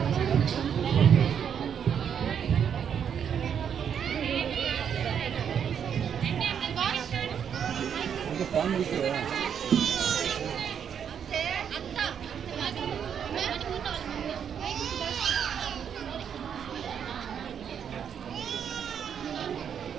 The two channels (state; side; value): quieter; left; 8.0 dB